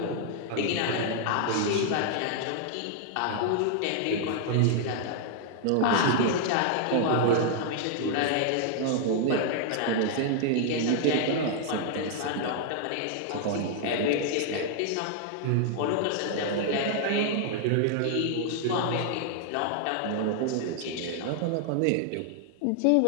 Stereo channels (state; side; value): different; both; correlation 0.00